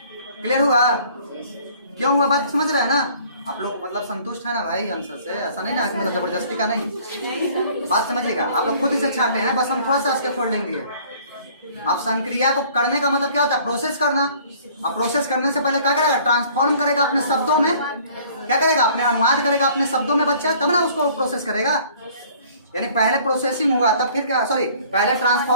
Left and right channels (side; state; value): both; inverted; correlation -0.54